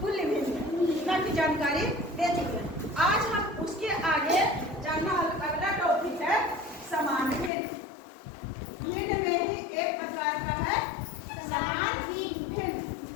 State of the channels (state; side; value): drops out; right; at 7.5 s